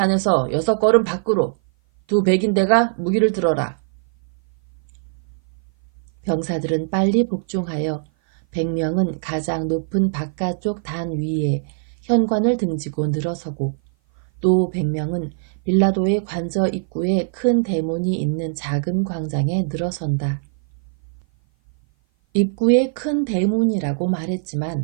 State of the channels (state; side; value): silent; left; 56 dB below the other